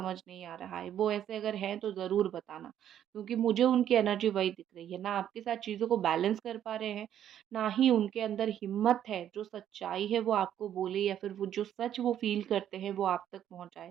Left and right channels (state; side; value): quieter; left; 10.5 dB